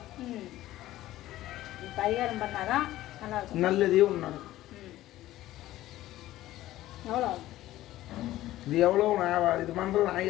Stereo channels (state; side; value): quieter; right; 15.1 dB